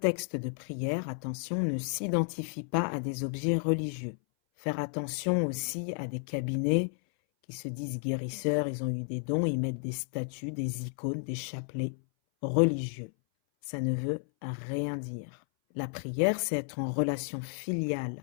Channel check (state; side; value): silent; right; 56 dB below the other